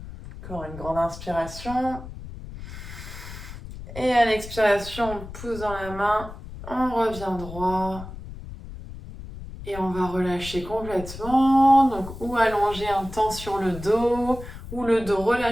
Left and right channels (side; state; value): left; noise; rumble, 12 dB below the sound